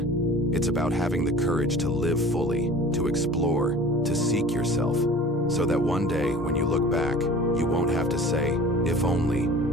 It's about having the courage to live fully, to explore, to seek yourself, so that one day when you look back, you won't have to say, if only.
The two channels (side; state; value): both; normal; correlation 0.43